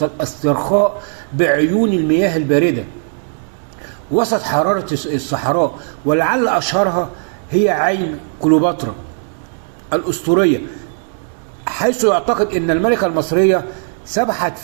الاسترخاء بعيون المياه الباردة وسط حرارة الصحراء، ولعل أشهرها هي عين كليوباترا الأسطورية، حيث يعتقد أن الملكة المصرية سبحت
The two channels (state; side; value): silent; left; digital silence